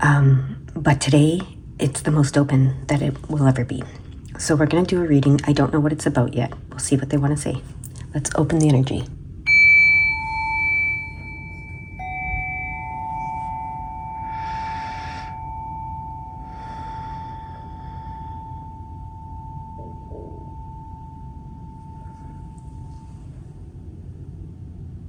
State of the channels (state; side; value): identical; both; correlation 1.00